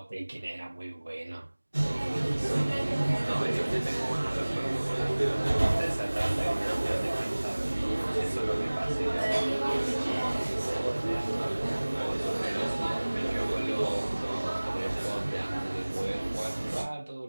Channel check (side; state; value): both; inverted; correlation -1.00